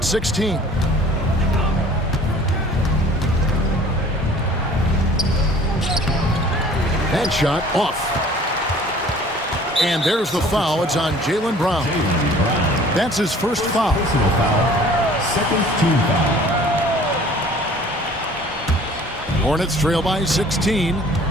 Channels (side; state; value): both; normal; correlation 0.50